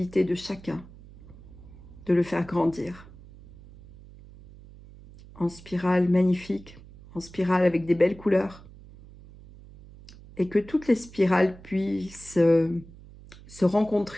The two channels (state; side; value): noise; right; hum, 20 dB below the sound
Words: de chacun de le faire grandir. En spirale magnifique, en spirale avec des belles couleurs, et que toutes les spirales puissent se